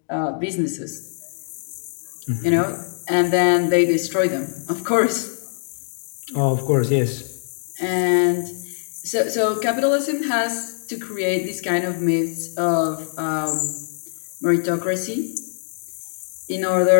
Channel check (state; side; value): silent; right; digital silence